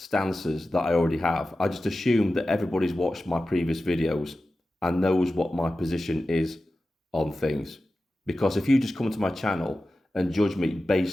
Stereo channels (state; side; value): normal; both; correlation 0.94